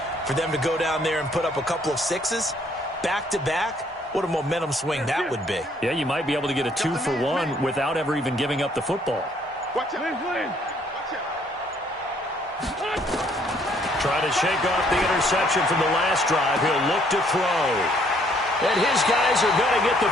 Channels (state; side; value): normal; both; correlation 0.65